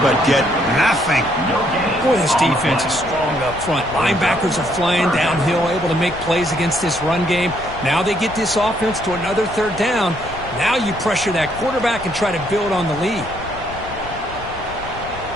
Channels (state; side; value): noise; left; rumble, 15 dB below the sound